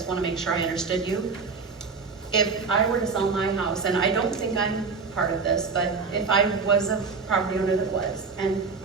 want to make sure I understood you. If I were to sell my house, and I don't think I'm part of this, but if I was a property owner that was, and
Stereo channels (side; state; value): left; quieter; 4.8 dB